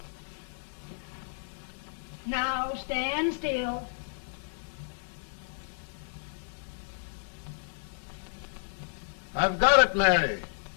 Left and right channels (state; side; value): silent; right; digital silence